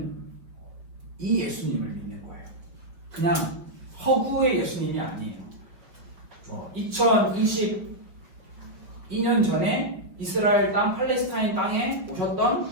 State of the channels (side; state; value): left; late; 5.7 ms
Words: 이 예수님을 믿는 거예요. 그냥 허구의 예수님이 아니에요. 2022년 전에 이스라엘 땅, 팔레스타인 땅에